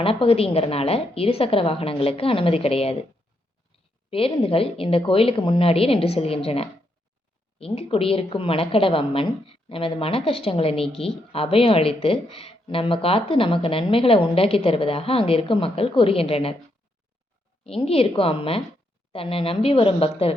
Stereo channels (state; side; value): normal; both; correlation 0.79